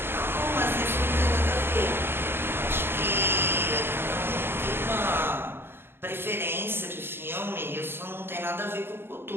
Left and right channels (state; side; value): late; left; 0.11 ms